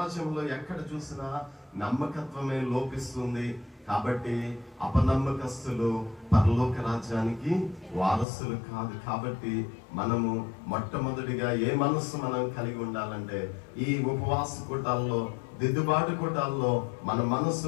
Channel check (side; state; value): right; drops out; at 8.2 s